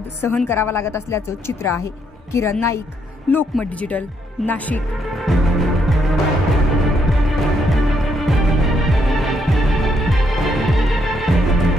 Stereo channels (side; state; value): both; normal; correlation 0.74